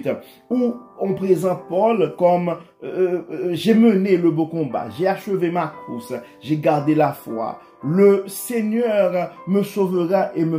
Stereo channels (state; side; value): identical; both; correlation 1.00